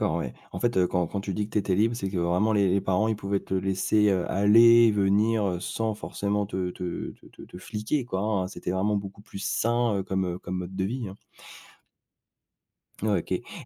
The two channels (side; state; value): both; identical; correlation 1.00